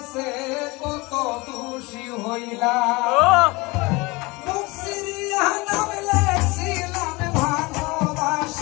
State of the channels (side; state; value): right; quieter; 24.1 dB